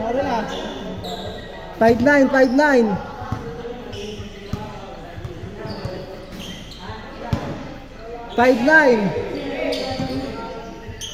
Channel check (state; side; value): identical; both; correlation 1.00